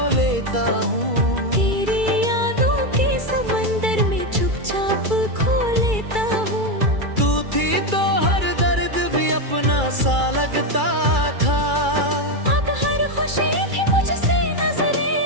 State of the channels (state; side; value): late; left; 2.3 ms